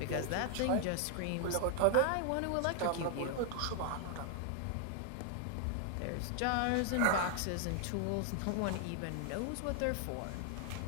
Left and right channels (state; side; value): different; both; correlation 0.00